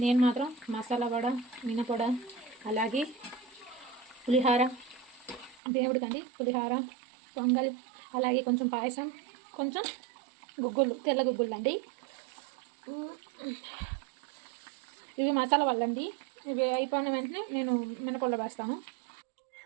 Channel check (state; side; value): drops out; left; at 5.6 s